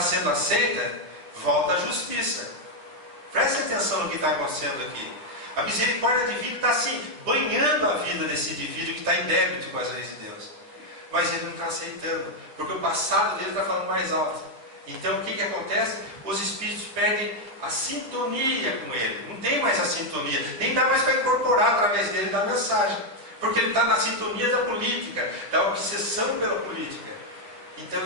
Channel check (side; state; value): left; late; 9.9 ms